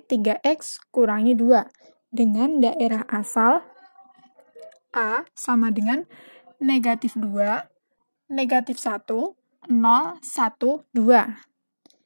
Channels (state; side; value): inverted; both; correlation -1.00